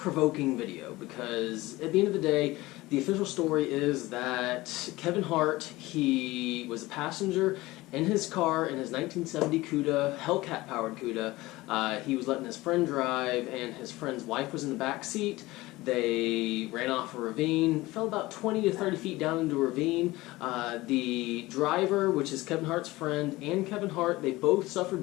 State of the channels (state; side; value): quieter; right; 19.4 dB